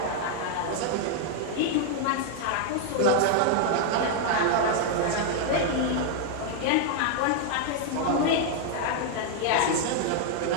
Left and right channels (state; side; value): different; both; correlation 0.00